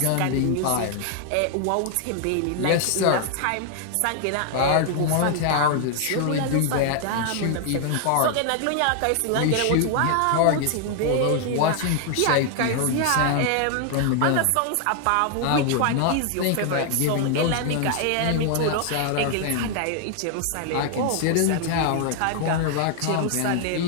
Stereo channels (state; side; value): different; both; correlation 0.00